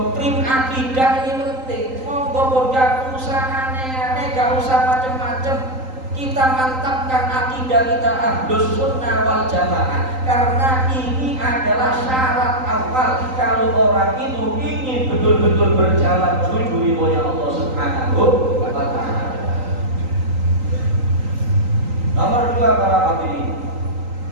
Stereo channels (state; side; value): late; left; 3.9 ms